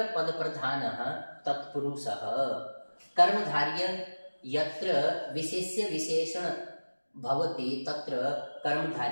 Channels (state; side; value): inverted; both; correlation -1.00